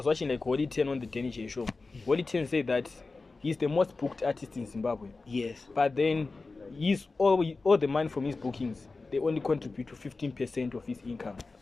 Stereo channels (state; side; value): quieter; right; 3.8 dB